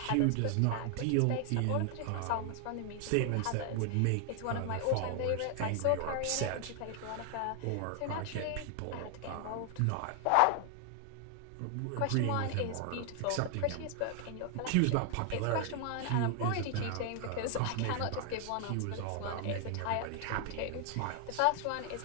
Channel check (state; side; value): different; both; correlation 0.00